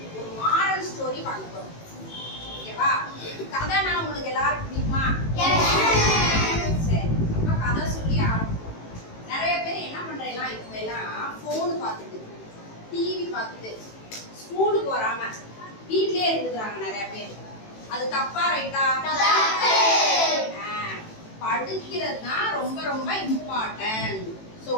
ஒரு மாரல் ஸ்டோரி பார்க்க போறோம். ஓகேவா? கதை நான் உங்களுக்கு எல்லாருக்கும் பிடிக்குமா? சரி. அப்ப கதை சொல்லி ஆரம்பிப்போம். நிறைய பேர் என்ன பண்றீங்களா இப்ப எல்லாம் போன் பார்த்துட்டு டிவி பார்த்துட்டு ஸ்கூலுக்கு வராம வீட்லயே இருந்துறாங்க நிறைய பேர். அது தப்பா ரைட்டா? படிக்கிறது தான் ரொம்ப ரொம்ப இம்பார்ட்டன்ட். சோ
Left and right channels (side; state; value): right; late; 18 ms